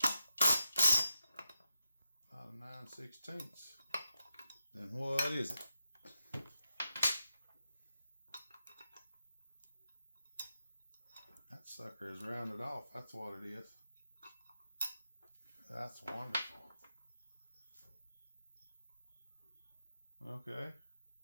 About a 9/16. Then what is it? That sucker is rounded off. That's what it is. That's wonderful. Okay.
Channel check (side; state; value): both; inverted; correlation -0.86